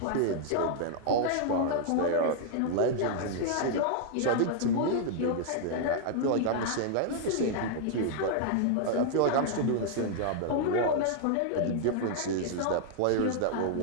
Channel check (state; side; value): different; both; correlation 0.00